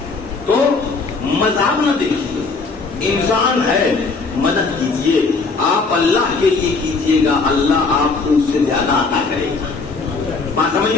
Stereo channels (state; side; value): quieter; right; 4.2 dB